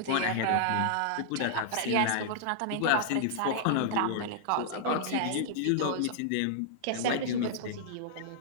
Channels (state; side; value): different; both; correlation -0.01